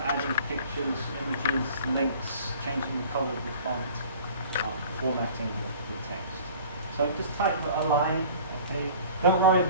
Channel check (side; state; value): both; inverted; correlation -0.46